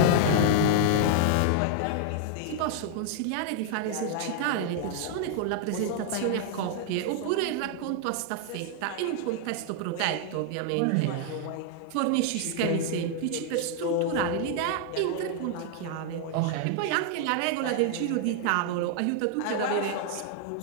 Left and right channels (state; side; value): different; both; correlation 0.00